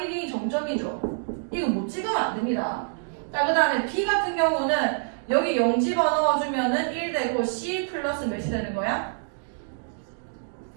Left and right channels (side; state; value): left; silent; digital silence